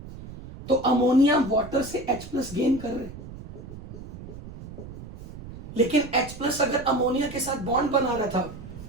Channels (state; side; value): noise; right; rumble, 14 dB below the sound